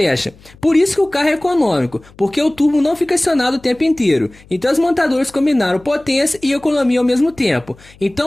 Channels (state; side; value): noise; left; hum, 26 dB below the sound